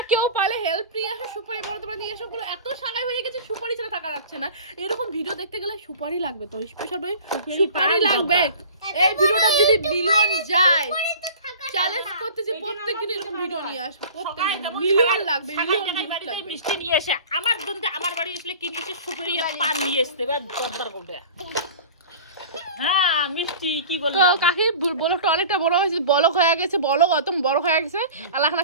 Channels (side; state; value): both; inverted; correlation -0.40